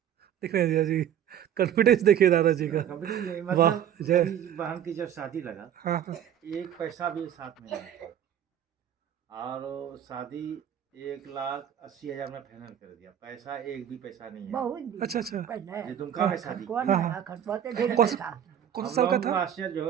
दिख रहे हैं जीजा जी, कॉन्फिडेंस देखिए दादाजी का। कंपनी नहीं, वाह, मतलब जय। मेरी बहन की जब शादी लगा, हाँ हाँ। एक पैसा भी साथ में नहीं था, और वो शादी 1,80,000 में फाइनल कर दिया, पैसा एक भी पैसा नहीं है। बहुत दिन अच्छा अच्छा। पहले ये दुमका में हाँ शादी कौन की। हाँ, है हाँ। खटपा तो ढेर कौन सा पैसा। कौन सा हम साल का लोगों को था? आश्चर्य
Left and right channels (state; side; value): quieter; left; 9.9 dB